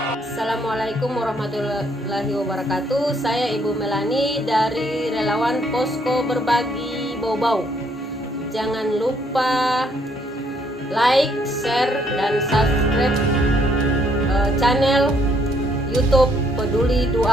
Assalamualaikum warahmatullahi wabarakatuh. Saya Ibu Melani dari Relawan Posko Berbagi Bau-Bau. Jangan lupa like, share, dan subscribe channel YouTube Peduli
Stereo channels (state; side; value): normal; both; correlation 0.69